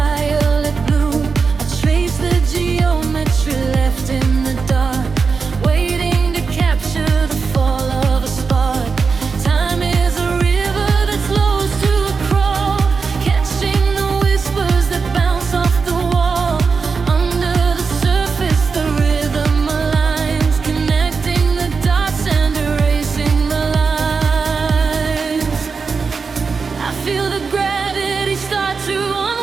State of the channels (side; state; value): left; quieter; 5.0 dB